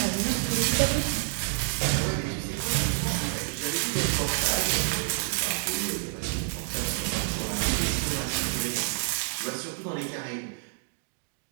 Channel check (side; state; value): left; silent; digital silence